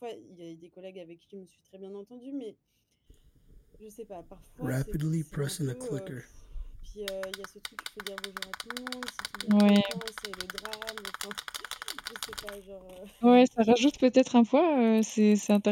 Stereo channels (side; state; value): both; identical; correlation 1.00